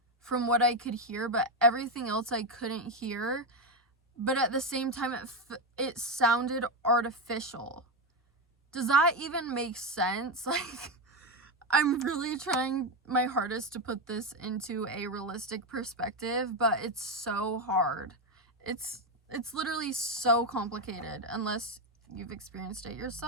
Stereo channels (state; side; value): normal; both; correlation 0.09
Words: from what I could hear, but everything else I couldn't hear. But at the same time, it sounded artificial. Does that even make sense? Like, I'm really trying my hardest to put this into a realistic perspective, but it's so hard. It's literally so complicated unless you've experienced it